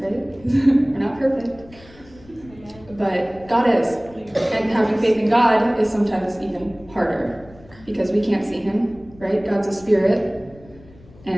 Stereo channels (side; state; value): left; noise; rumble, 23 dB below the sound